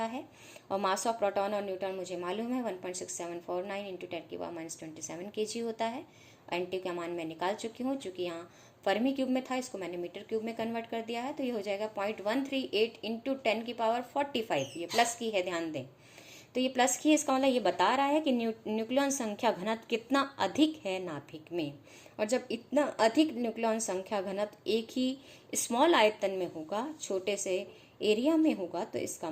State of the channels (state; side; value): identical; both; correlation 1.00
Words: है। और मास ऑफ प्रोटॉन और न्यूट्रॉन मुझे मालूम है 1.6749 इंटू 10⁻27 kg होता है। NT का मान मैं निकाल चुकी हूँ, चूँकि यहाँ फर्मी क्यूब में था, इसको मैंने मीटर क्यूब में कन्वर्ट कर दिया है। तो ये हो जाएगा 0.138 इंटू 10⁻45, ये प्लस की है, ध्यान दें। तो ये प्लस की है, इसका मतलब ये बता रहा है कि न्यूक्लियन संख्या घनत्व कितना अधिक है नाभिक में। और जब इतना अधिक न्यूक्लियन संख्या घनत्व एक ही स्मॉल आयतन में होगा, छोटे से एरिया में होगा, तो इसका